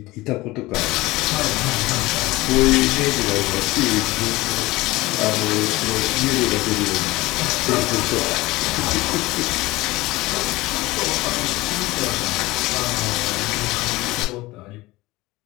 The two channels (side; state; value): right; quieter; 19.9 dB